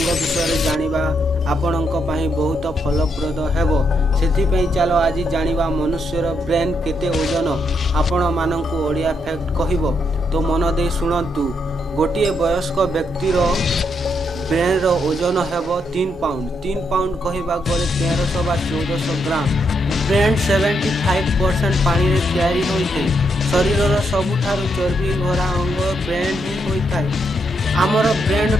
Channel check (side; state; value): both; normal; correlation 0.79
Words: विषय जानिबा आपणक बहुत फलप्रद हेबो। सेथिपई चलो आज जानिबा मनुष्यर ब्रेन केते ओजन आपण मानकु ओडिया फैक्ट कहबो तो मन दे सुनंतु। गोटे वयस्क व्यक्तिर ब्रेन रो ओजन हेबो 3 पाउंड। 3 पाउंड कहबा गले 1300 बा 1400 ग्राम। ब्रेन 75% पानी रे तैयारी होइथे। शरीर सबुठारु चर्बी भरा अंग ब्रेन ही होइथाय। आमर ब्रेन